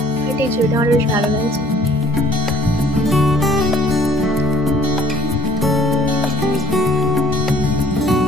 এই চুলটা আমার বেশ ভালো লাগছে।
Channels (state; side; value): normal; both; correlation 0.57